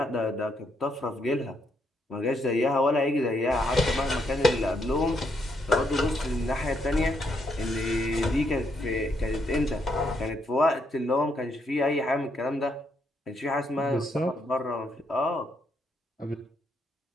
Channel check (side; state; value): both; normal; correlation 0.76